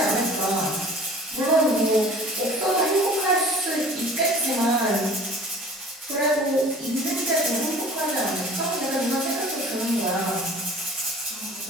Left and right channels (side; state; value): both; normal; correlation 0.46